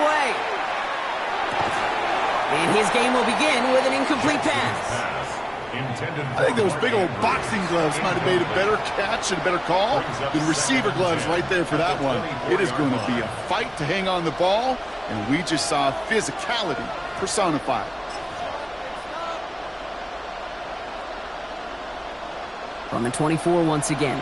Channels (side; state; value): both; identical; correlation 1.00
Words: And his game will begin with an incomplete pass. I think those big old boxing gloves might have made a better catch and a better call than receiver gloves right there for that one. It is going to be a fight to hang on the ball, and we just saw physicality personified. From the 24 once again,